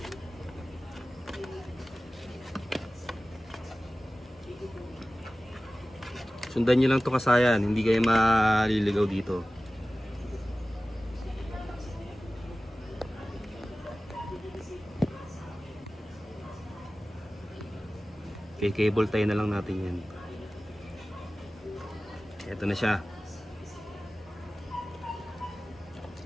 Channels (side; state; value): both; normal; correlation 0.97